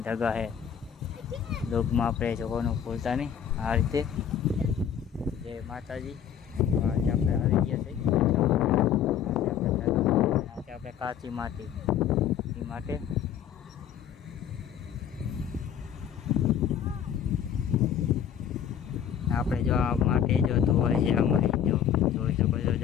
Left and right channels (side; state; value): right; quieter; 8.9 dB